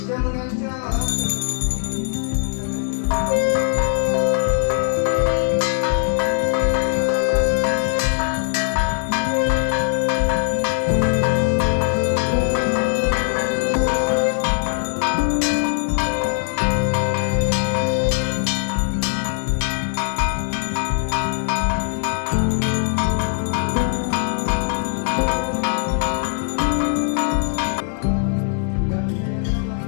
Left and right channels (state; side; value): silent; right; 65 dB below the other